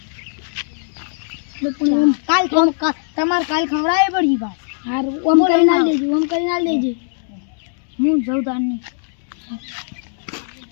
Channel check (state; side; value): silent; right; digital silence